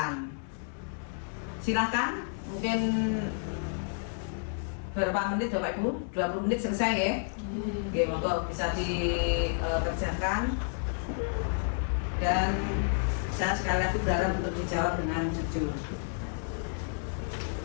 Silahkan. Mungkin berapa menit Bapak Ibu? 20 menit selesai ya? Oke, monggo bisa dikerjakan. Dan saya sekali lagi berharap untuk dijawab dengan jujur.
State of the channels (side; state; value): right; silent; digital silence